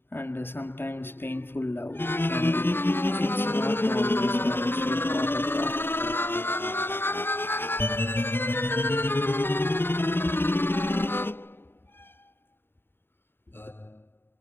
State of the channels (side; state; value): right; late; 0.10 ms